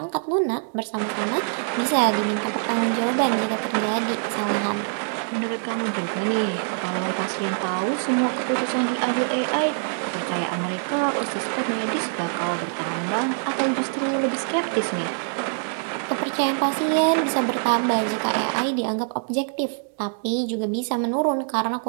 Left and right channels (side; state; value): left; silent; digital silence